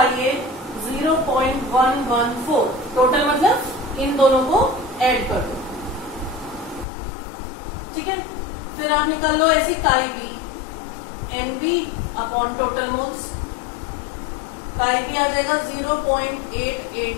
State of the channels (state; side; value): drops out; right; at 6.9 s